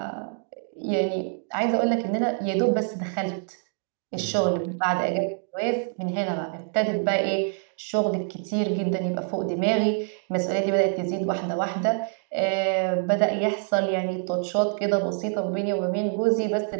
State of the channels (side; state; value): left; silent; 57 dB below the other